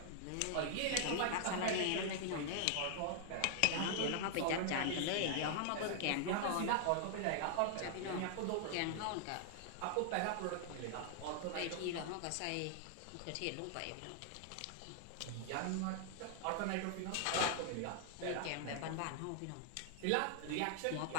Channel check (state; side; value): different; both; correlation 0.00